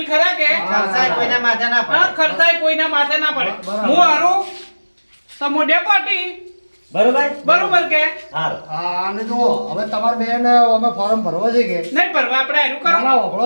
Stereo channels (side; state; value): both; inverted; correlation -1.00